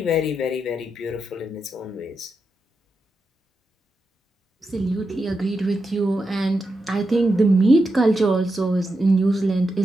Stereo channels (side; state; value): both; normal; correlation 0.87